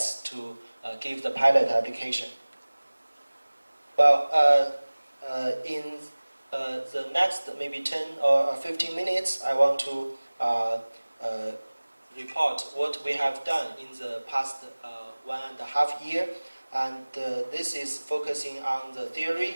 to give the pilot application. Well, in the next maybe 10 or 15 minutes, I want to report what we have done in the past 1.5 years. And this is focusing on the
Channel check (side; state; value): both; inverted; correlation -1.00